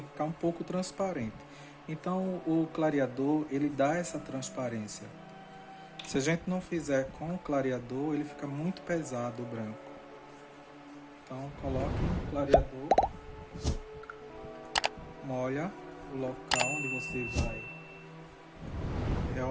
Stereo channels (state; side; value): identical; both; correlation 1.00